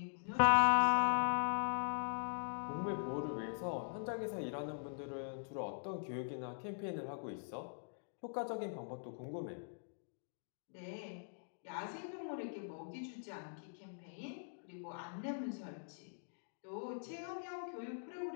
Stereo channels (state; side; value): silent; right; digital silence